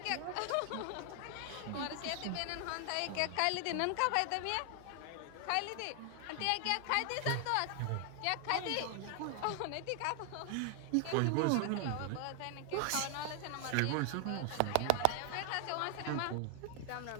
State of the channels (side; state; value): both; different; correlation 0.00